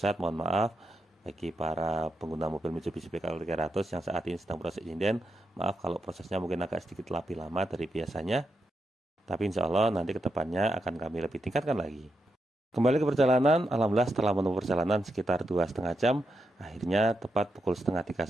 mohon maaf bagi para pengguna mobil Mitsubishi PKWL 300 yang saat ini sedang proses inden. Maaf kalau prosesnya mungkin agak sedikit lebih lama dari biasanya. Tapi insya Allah nanti kedepannya akan kami lebih tingkatkan lagi. Kembali ke perjalanan, alhamdulillah setelah menempuh perjalanan sekitar 2,5 jam, akhirnya tepat pukul setengah 3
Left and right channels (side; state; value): both; normal; correlation 0.85